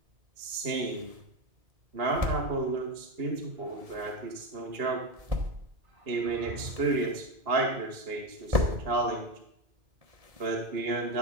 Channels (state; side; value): late; left; 2.8 ms